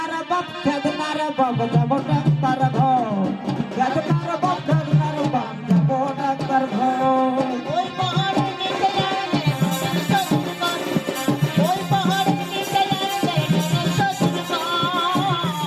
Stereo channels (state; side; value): identical; both; correlation 1.00